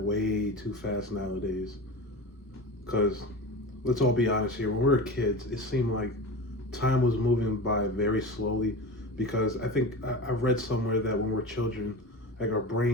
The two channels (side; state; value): both; normal; correlation 0.29